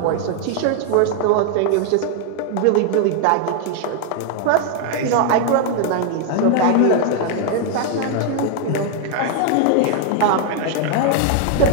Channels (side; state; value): both; different; correlation 0.00